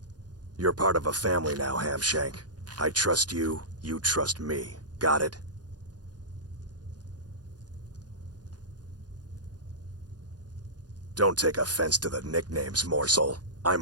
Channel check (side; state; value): left; late; 0.69 ms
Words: You're part of a family now, Hamshank. I trust you, you trust me. Got it? Don't take offense to the nicknames, morsel.